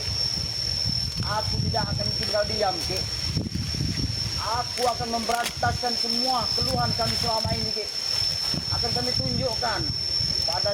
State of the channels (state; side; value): identical; both; correlation 1.00